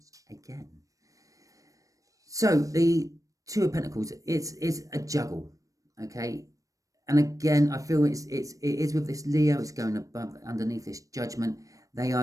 again. So the 2 of Pentacles, it's a juggle, okay? And again, I feel it is with this Leo, it's going above, underneath this judgment. They are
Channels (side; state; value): left; late; 0.16 ms